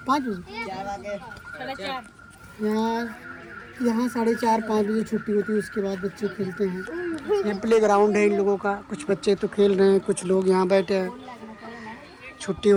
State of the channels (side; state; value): both; identical; correlation 1.00